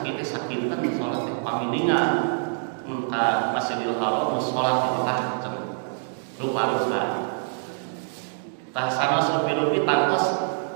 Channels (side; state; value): left; silent; digital silence